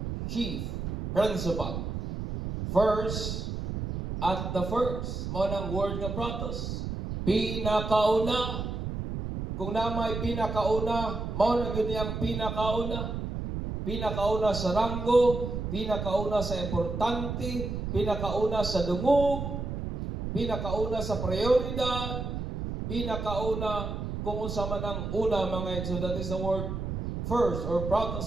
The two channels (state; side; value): noise; right; rumble, 4 dB below the sound